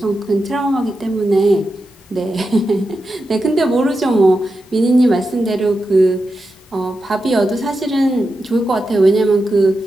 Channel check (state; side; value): normal; both; correlation 0.89